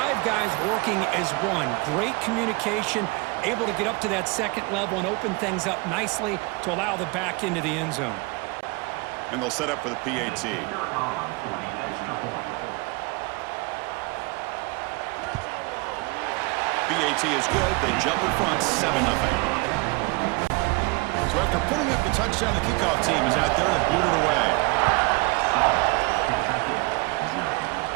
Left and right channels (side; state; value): left; quieter; 26.6 dB